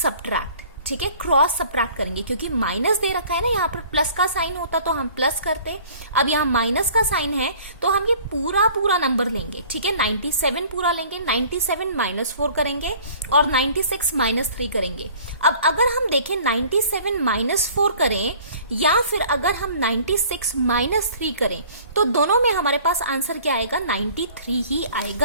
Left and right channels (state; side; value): inverted; both; correlation -0.50